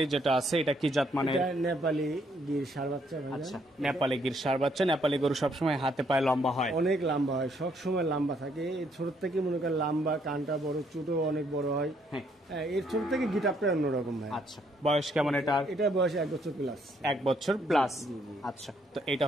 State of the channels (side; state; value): both; normal; correlation 0.70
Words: যেটা আছে এটা কি জাত মানে? নেপালি গির ষাঁড় বাচ্চা। আচ্ছা, নেপালি গির ষাঁড় বাচ্চা। নেপালি গরু সবসময় হাতে পায়ে লম্বা হয়, অনেক লম্বা হয়, সবসময় লম্বা থাকে। ছোট থেকে মনে করেন লম্বা, কানটা বড়, চুটও অনেক বড় হয়। এর ছোট থেকে গিটারটা অন্যরকম ভাই। আচ্ছা, বয়স কেমন এটা? এটা বয়স 1 বছর প্লাস। 1 বছর প্লাস। আচ্ছা, তো এটা